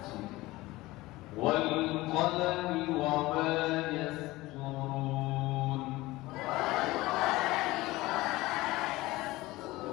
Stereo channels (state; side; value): quieter; right; 19.3 dB